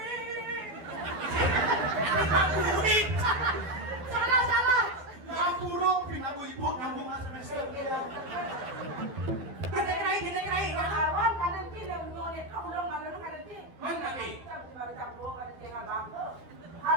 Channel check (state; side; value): late; left; 12 ms